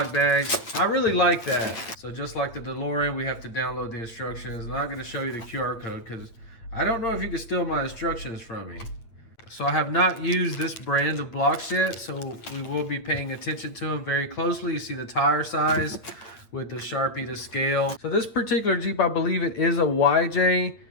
bags. I really like that. So just like the DeLorean, we have to download the instructions. I'm not going to show you the QR code because I don't know if you can steal my instructions from me. So I have not used this brand of blocks yet, so we will be paying attention to them very closely. You see the tire size with the Sharpie to scale. So this particular Jeep, I believe it is a YJ,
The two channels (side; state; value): right; late; 8.6 ms